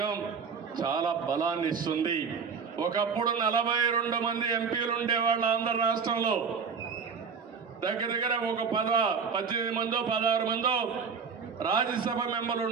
చాలా బలాన్ని ఇస్తుంది. ఒకప్పుడు 42 మంది ఎంపీలు ఉండేవాళ్ళు ఆంధ్ర రాష్ట్రంలో. దగ్గర ఒక 18 మందో 16 మందో రాజ్యసభ మెంబర్లు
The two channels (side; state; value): left; quieter; 5.8 dB